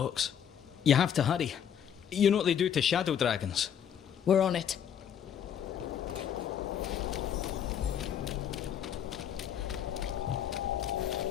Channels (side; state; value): right; quieter; 8.8 dB